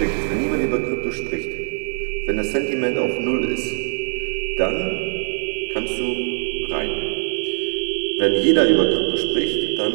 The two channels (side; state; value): left; silent; digital silence